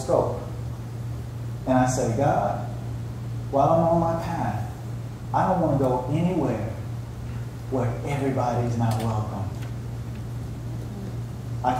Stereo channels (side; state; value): both; identical; correlation 1.00